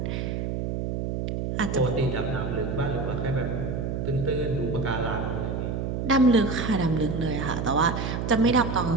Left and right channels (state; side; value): noise; right; hum, 2 dB below the sound